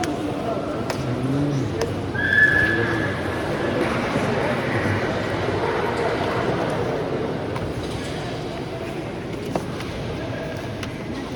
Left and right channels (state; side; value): identical; both; correlation 1.00